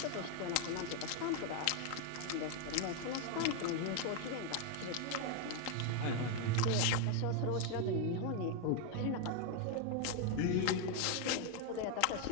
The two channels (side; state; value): both; different; correlation 0.01